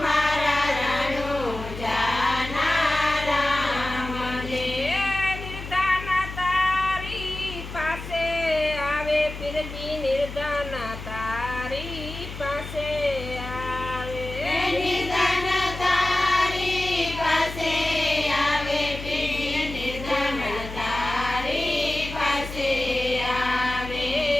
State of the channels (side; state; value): left; noise; hum, 10 dB below the sound